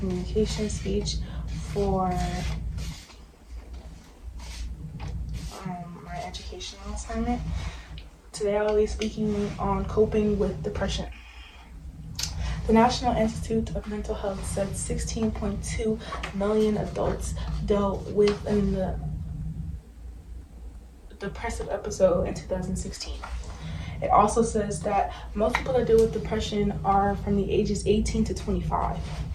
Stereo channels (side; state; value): both; identical; correlation 1.00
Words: speech for my educational assignment. Today I will be speaking on coping with depression. The National Institute of Mental Health said 16.2 million adults dealt with a depressive episode in 2016. It also says that most people that deal with depression are from the ages 18 to 25.